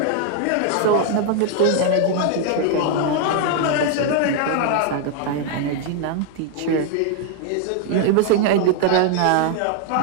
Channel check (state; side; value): different; both; correlation 0.00